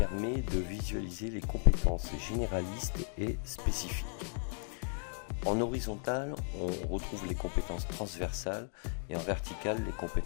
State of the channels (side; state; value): right; silent; 54 dB below the other